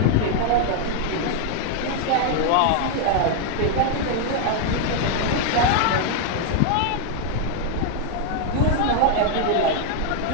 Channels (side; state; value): both; different; correlation 0.00